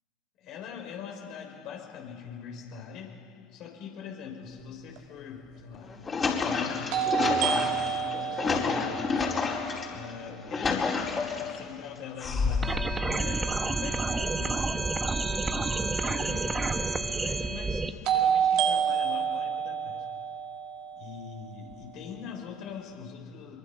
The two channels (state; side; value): normal; both; correlation 0.66